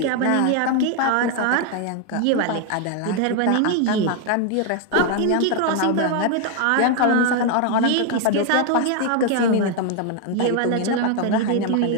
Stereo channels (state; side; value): different; both; correlation 0.01